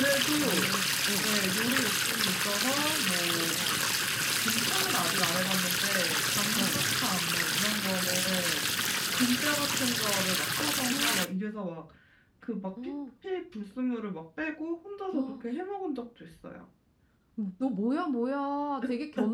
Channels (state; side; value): identical; both; correlation 1.00